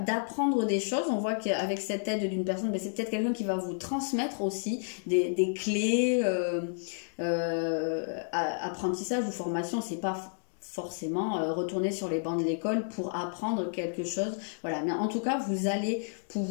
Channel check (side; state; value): right; silent; digital silence